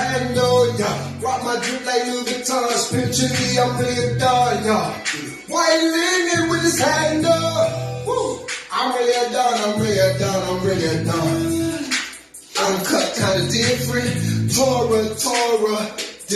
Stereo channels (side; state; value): both; identical; correlation 1.00